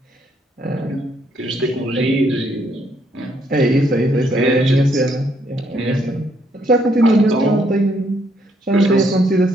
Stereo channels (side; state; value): both; normal; correlation 0.71